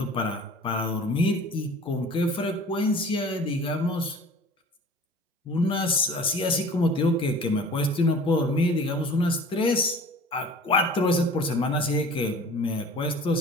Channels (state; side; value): normal; both; correlation 0.44